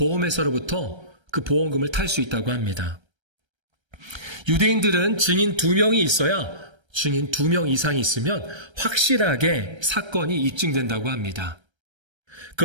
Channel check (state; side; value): late; left; 1.3 ms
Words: 그 보험금을 탈 수 있다고 합니다. 유대인들은 증인 2명이 있어야, 증인 2명 이상이 있으면 확실하게 사건이 입증된다고 합니다.